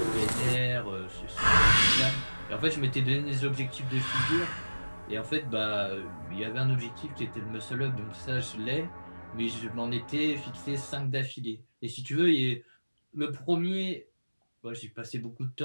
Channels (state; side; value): inverted; both; correlation -1.00